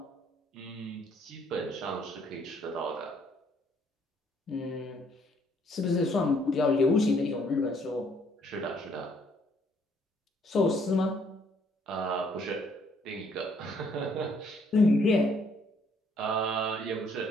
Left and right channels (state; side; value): normal; both; correlation 0.66